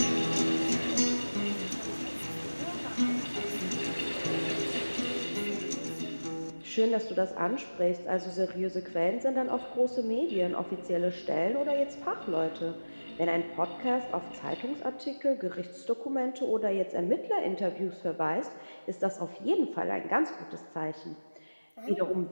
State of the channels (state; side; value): inverted; both; correlation -1.00